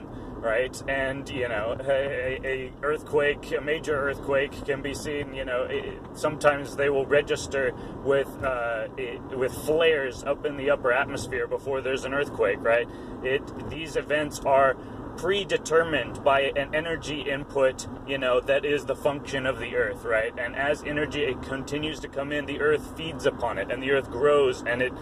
right? And, you know, a earthquake, a major earthquake can be seen, you know, sometimes they will register with flares up in the upper atmosphere before there's an earthquake, right? These events are predetermined by an energy input, you know, that is the function of the earth, right? And as energy it continues to come in, the earth feeds upon it, and the earth grows, and it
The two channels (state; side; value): identical; both; correlation 1.00